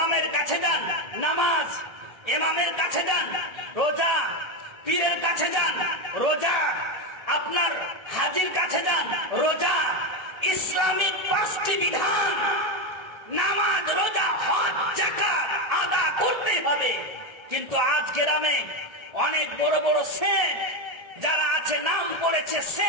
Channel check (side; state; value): left; late; 1.4 ms